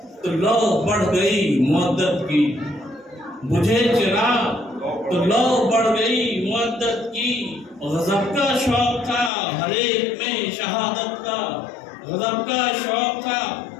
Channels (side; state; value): right; drops out; at 9.3 s